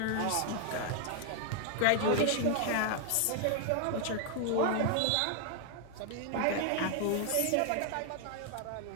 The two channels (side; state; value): both; different; correlation 0.00